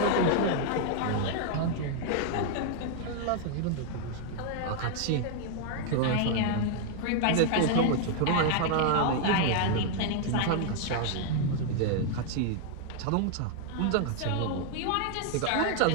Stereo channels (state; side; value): different; both; correlation 0.00